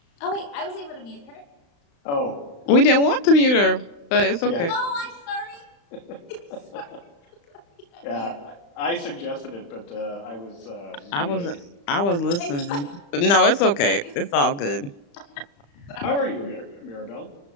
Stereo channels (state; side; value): late; right; 35 ms